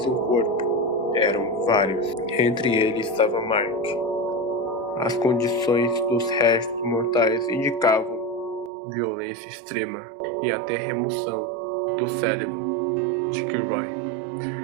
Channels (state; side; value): drops out; left; at 8.7 s